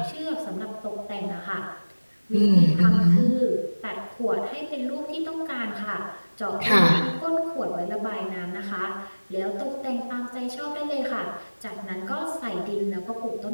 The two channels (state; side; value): inverted; both; correlation -1.00